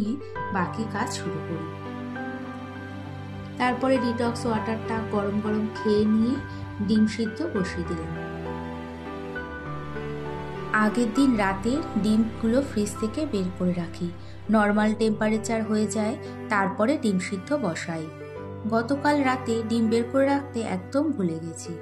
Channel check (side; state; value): both; identical; correlation 1.00